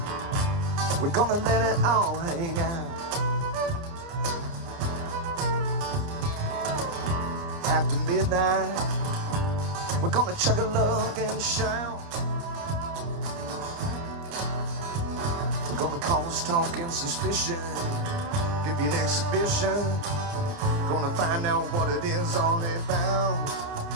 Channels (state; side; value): late; left; 29 ms